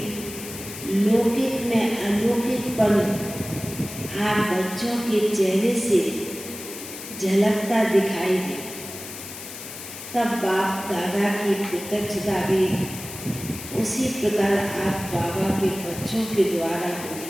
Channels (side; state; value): left; noise; hiss, 11 dB below the sound